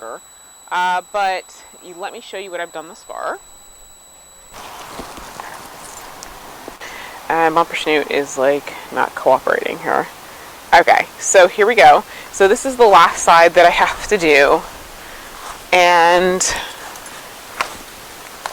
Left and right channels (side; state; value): both; identical; correlation 1.00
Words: But let me show you what I've done thus far. And Bumper Snoot is like not cooperating here. Okay, so here we go. So this is the last side that I have to do. And